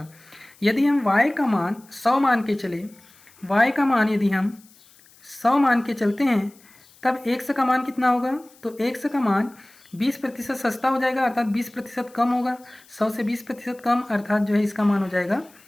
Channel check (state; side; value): noise; left; hiss, 27 dB below the sound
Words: यदि हम वाई का मान 100 मान के चले, वाई का मान यदि हम 100 मान के चलते हैं, तब एक्स का मान कितना होगा? तो एक्स का मान 20% सस्ता हो जाएगा, अर्थात 20% कम होगा। 100 से 20% कम, अर्थात जो है इसका मान हो जाएगा